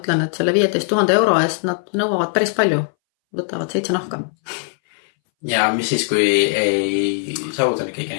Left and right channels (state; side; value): silent; right; 63 dB below the other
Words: et selle 15 000 euro eest nad nõuavad päris palju, võtavad 7 nahka. Ja mis siis, kui ei saavuta kõiki